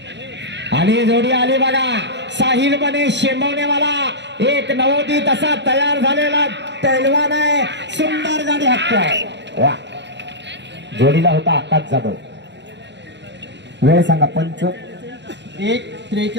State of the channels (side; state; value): left; late; 0.51 ms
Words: आणि जोडी आली बघा. साहिल बने शेंबवणेवाला एक नवोदित असा तयार झालेला पैलवान आहे. सुंदर गाडी हाकतोय. वा जोडीला होता आकाश जाधव. वेळ सांगा.